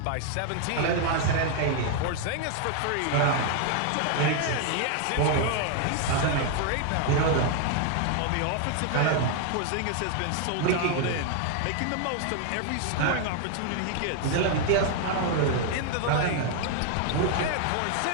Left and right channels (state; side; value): different; both; correlation 0.00